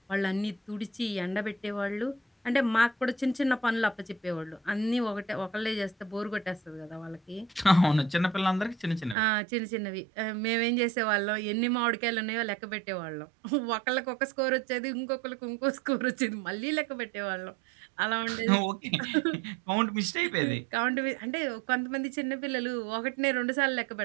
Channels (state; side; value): drops out; left; at 9.2 s